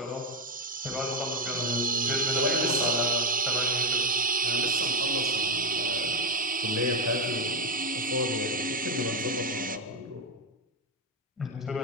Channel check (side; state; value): both; normal; correlation 0.06